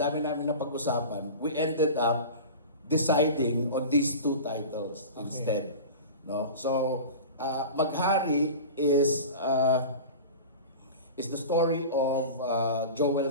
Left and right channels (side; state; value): both; inverted; correlation -0.33